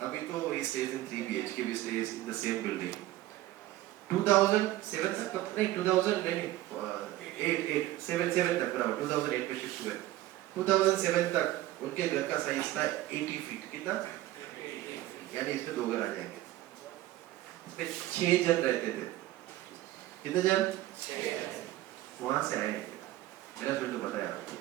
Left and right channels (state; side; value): quieter; left; 15.7 dB